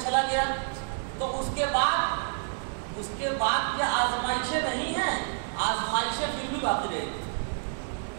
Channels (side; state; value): left; silent; digital silence